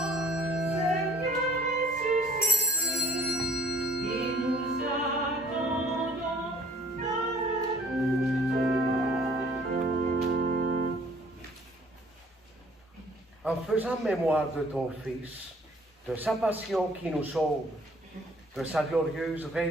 En faisant mémoire de ton Fils, de sa passion qui nous sauve, de sa glorieuse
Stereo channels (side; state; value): both; normal; correlation 0.57